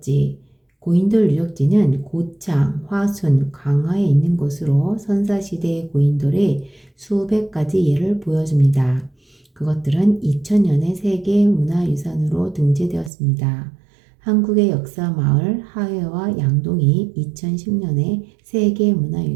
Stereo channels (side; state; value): left; drops out; at 13.1 s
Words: 고인돌 유적지는 고창, 화순, 강화에 있는 곳으로 선사시대의 고인돌의 수백 가지 예를 보여줍니다. 그것들은 2000년에 세계문화유산으로 등재되었습니다. 한국의 역사 마을 하회와 양동이 2010년에